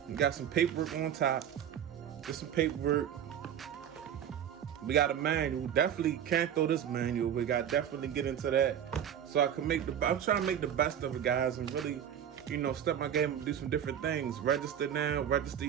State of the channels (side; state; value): left; quieter; 9.5 dB